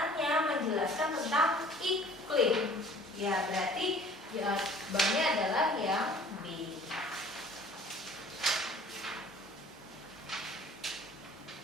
menjelaskan tentang iklim. Ya berarti jawabannya adalah yang B.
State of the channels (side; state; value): both; normal; correlation 0.50